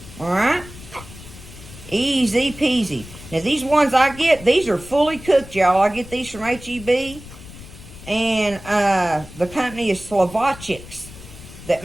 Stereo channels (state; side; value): noise; left; rumble, 16 dB below the sound